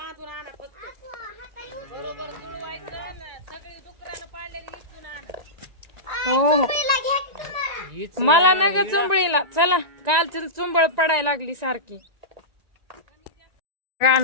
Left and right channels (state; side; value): late; left; 1.9 ms